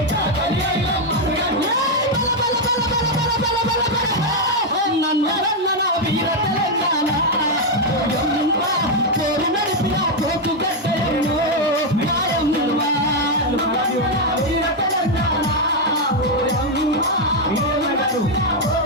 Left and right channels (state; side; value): normal; both; correlation 0.02